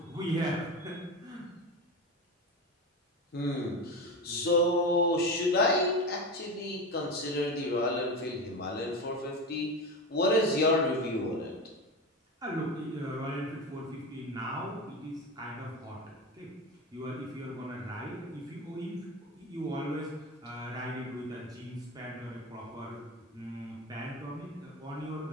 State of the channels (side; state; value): both; normal; correlation 0.22